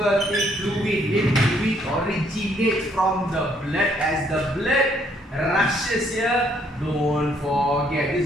fluid. Lymph fluid originates from the blood. As the blood rushes here, don't forget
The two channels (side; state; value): both; normal; correlation 0.68